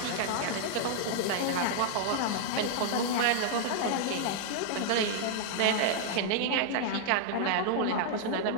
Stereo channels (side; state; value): both; different; correlation -0.01